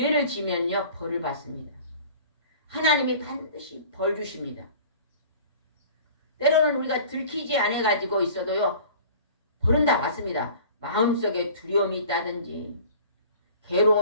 지면요 벌을 받습니다. 하나님이 반드시 벌 주십니다. 때로는 우리가 들키지 않아 가지고 있어도요 벌은 다 받습니다. 마음속에 두려움이 있다든지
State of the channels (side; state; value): both; inverted; correlation -0.45